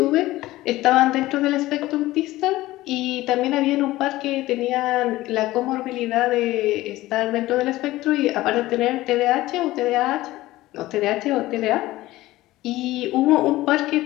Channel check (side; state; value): right; quieter; 17.2 dB